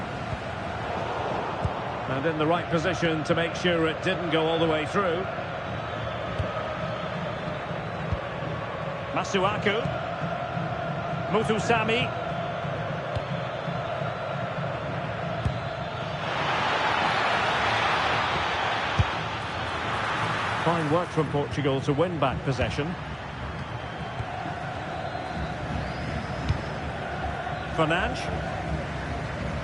And in the right position to make sure it didn't go all the way through. Masuaku. Muthusami. Fine work from Portugal to win back possession. Fernandes.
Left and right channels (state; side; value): identical; both; correlation 1.00